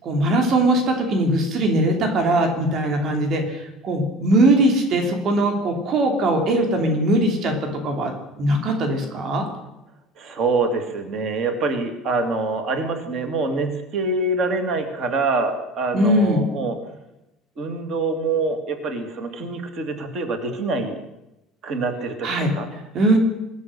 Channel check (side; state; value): both; normal; correlation 0.39